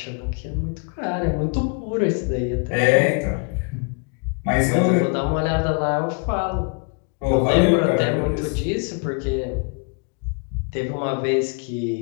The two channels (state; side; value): quieter; right; 34.7 dB